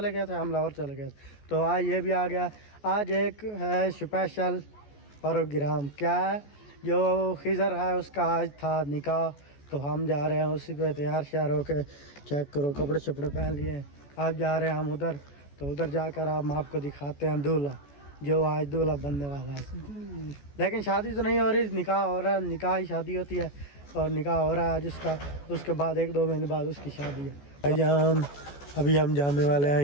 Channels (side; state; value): right; late; 14 ms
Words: गए थे, हम लाहौर चले गए थे। तो आज ये भी आ गया। आज एक है स्पेशल प्रोग्राम, क्या है, जो खिज़र है उसका आज था निकाह। तो हम जा रहे हैं उसी पे तैयार श्यार होके। चेक करो, कपड़े शपड़े पहन लिए। आप जा रहे हैं हम उधर, तो उधर जाकर हम आपको दिखाते हैं दूल्हा, जो आज दूल्हा बनने वाला है। लेकिन शादी तो नहीं हो रही, निकाह हो रहा है। निकाह ही शादी होती है और निकाह हो रहा है आज उसका। उसके बाद 1-2 महीने बाद उसकी शादी है। भाईजान अभी हम जाने वाले हैं